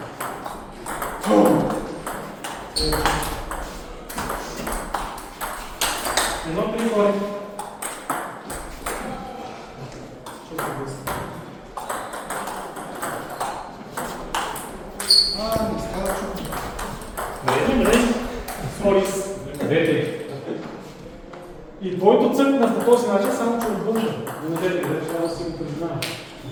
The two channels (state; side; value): identical; both; correlation 1.00